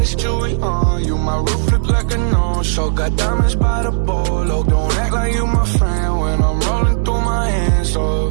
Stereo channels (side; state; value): left; silent; digital silence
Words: jewelry on you. My roof look like a no-show. Got diamonds by the bolo. Don't act like you my friend when I'm rolling